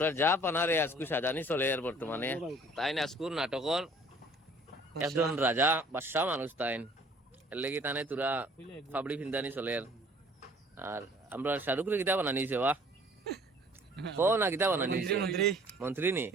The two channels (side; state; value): both; normal; correlation 0.54